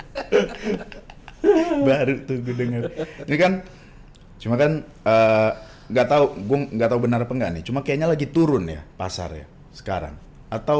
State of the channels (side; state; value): both; identical; correlation 1.00